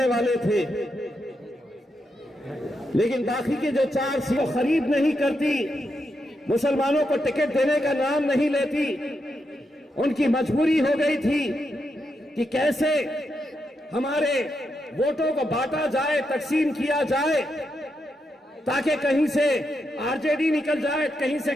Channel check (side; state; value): both; normal; correlation 0.83